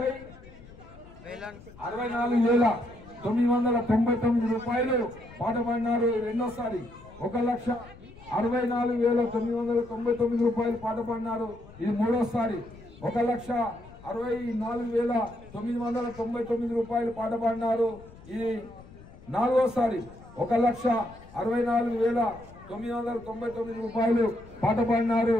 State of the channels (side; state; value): left; noise; rumble, 20 dB below the sound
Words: రూపాయలు పాట పాడినారు రెండోసారి. 1,64,999 రూపాయలు పాట పాడినారు ఇది మూడోసారి. 1,64,999 రూపాయలు పాట పాడినారు ఇది నాలుగోసారి. 1,64,999 రూపాయలు పాట పాడినారు